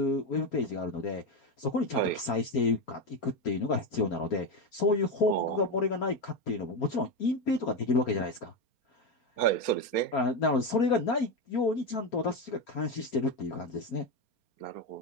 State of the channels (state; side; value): late; right; 4.3 ms